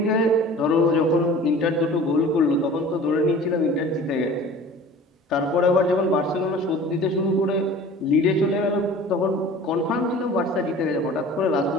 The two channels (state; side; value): normal; both; correlation 0.43